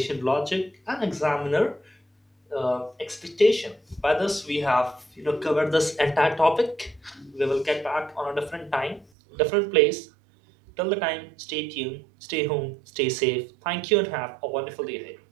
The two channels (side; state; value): left; drops out; at 9.1 s